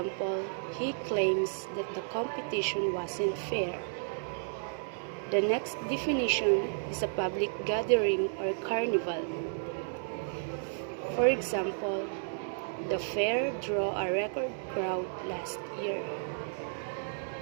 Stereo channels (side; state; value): left; silent; digital silence